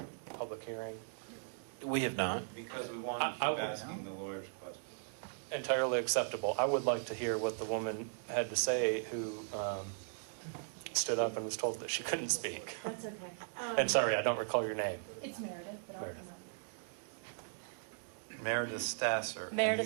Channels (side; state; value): left; silent; digital silence